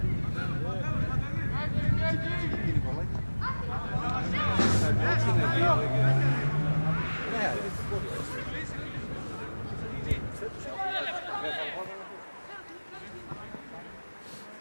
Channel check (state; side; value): inverted; both; correlation -1.00